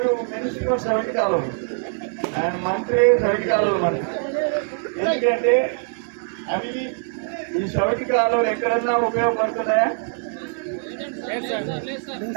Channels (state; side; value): silent; left; 64 dB below the other